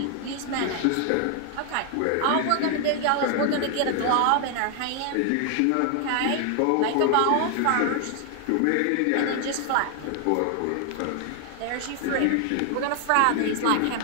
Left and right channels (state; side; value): different; both; correlation 0.00